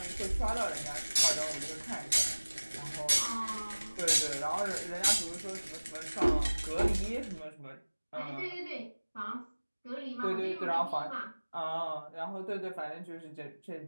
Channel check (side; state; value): both; inverted; correlation -1.00